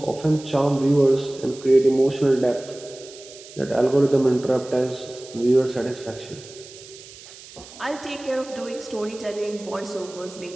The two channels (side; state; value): right; noise; hiss, 18 dB below the sound